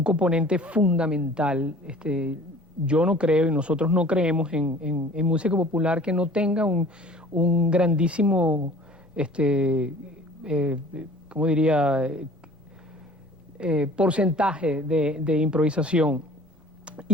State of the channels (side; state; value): both; normal; correlation 0.48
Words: componente fundamental. Yo no creo y nosotros no creemos en música popular que no tenga un grandísimo, ¿cómo diría?, porcentaje de improvisación.